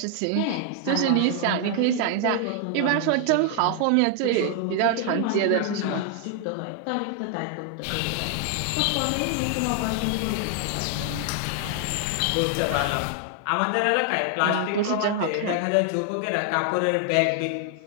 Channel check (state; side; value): different; both; correlation 0.00